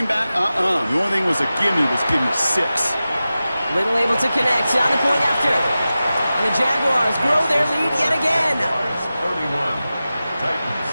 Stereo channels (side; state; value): both; inverted; correlation -0.95